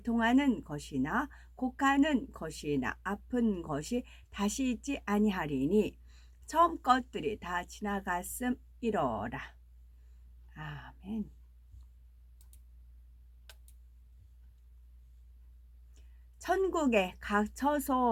것이나 곡하는 것이나 아픈 것이 다시 있지 아니하리니 처음 것들이 다 지나갔음이로라. 아멘. 천국의 각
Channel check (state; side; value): identical; both; correlation 1.00